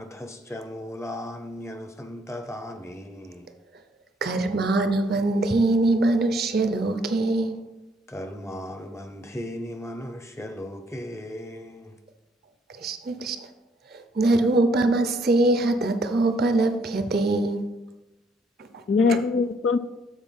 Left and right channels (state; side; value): normal; both; correlation 0.67